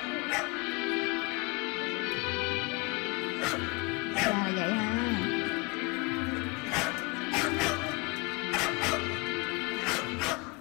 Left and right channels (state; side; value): quieter; right; 27.8 dB